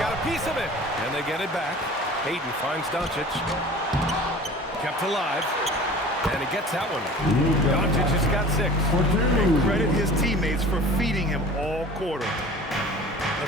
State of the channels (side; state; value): both; normal; correlation 0.43